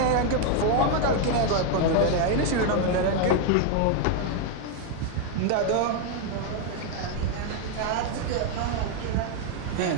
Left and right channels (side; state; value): both; different; correlation 0.01